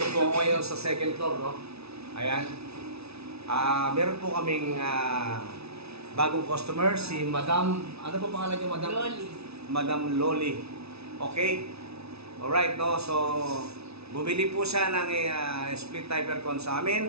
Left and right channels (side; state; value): left; late; 0.79 ms